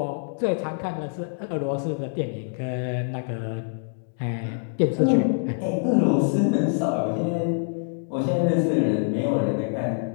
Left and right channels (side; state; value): right; silent; digital silence